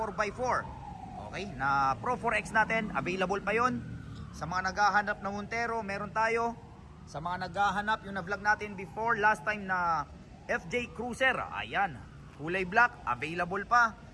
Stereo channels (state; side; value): identical; both; correlation 1.00